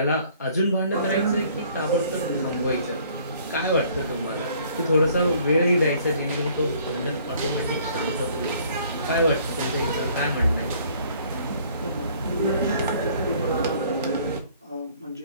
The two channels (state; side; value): inverted; both; correlation -0.58